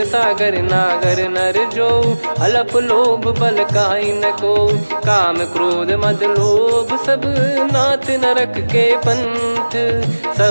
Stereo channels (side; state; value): both; inverted; correlation -1.00